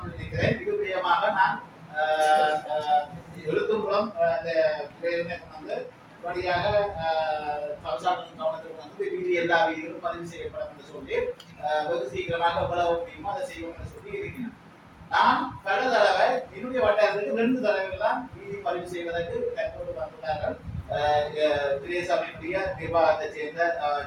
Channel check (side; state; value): both; identical; correlation 1.00